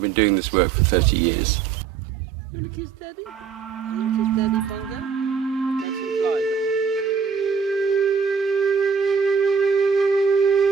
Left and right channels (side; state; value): left; quieter; 6.4 dB